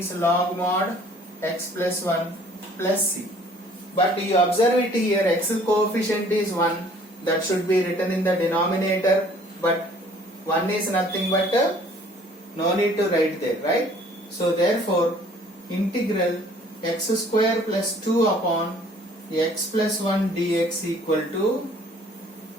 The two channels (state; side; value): normal; both; correlation 0.55